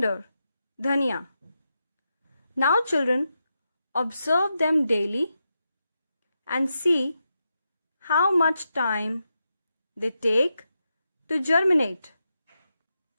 dhania. Now children, observe them daily and see how much time they take to germinate.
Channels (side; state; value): both; inverted; correlation -0.87